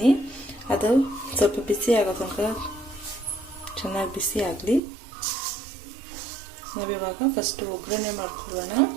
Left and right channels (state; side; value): drops out; left; at 4.8 s